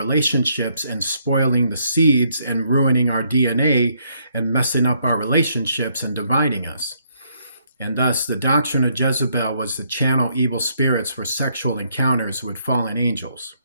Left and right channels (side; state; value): both; inverted; correlation -0.71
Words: and spoiling the seeds and ruining our DNA and messing up our relationships and dividing us. And thus the doctrine of Jezebel was to channel evil spirits for sexual encounters with fallen angels.